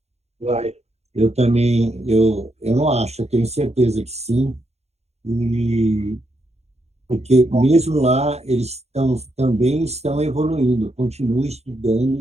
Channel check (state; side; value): late; left; 0.31 ms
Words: Vai. Eu também, eu não acho, eu tenho certeza que sim, e porque mesmo lá também estão evoluindo, continuam